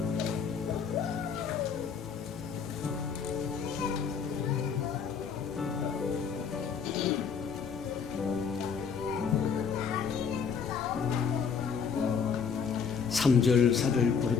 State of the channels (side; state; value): right; quieter; 6.3 dB